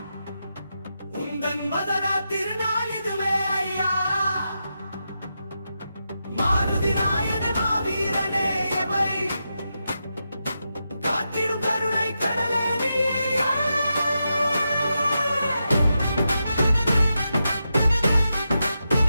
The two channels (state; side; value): inverted; both; correlation -0.87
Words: உந்தன் மதரா திருநாள் இதுவே ஐயா. மாருதி நாயனே மாவீரனே எவை காத்திடும் கருணை கடலே நீயே.